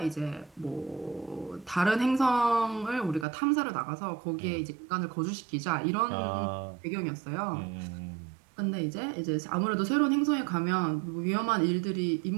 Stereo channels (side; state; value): left; drops out; at 3.2 s